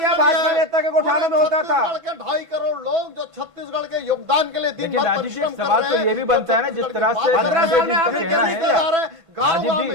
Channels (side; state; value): left; late; 1.5 ms